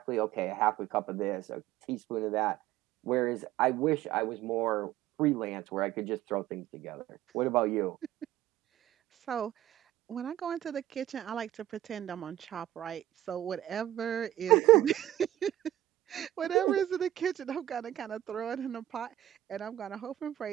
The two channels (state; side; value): quieter; left; 13.6 dB